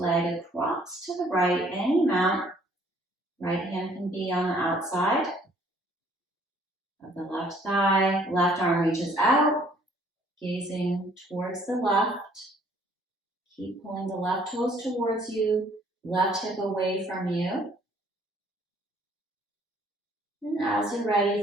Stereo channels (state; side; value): normal; both; correlation 0.60